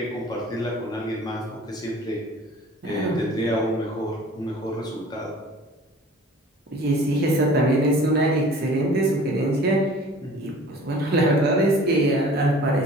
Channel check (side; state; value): both; normal; correlation 0.46